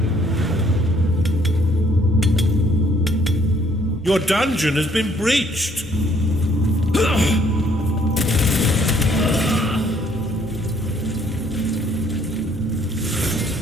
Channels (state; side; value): normal; both; correlation 0.64